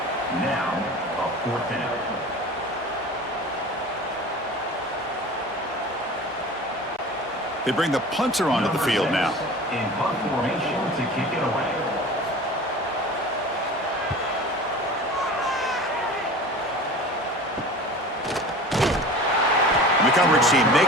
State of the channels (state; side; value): normal; both; correlation 0.38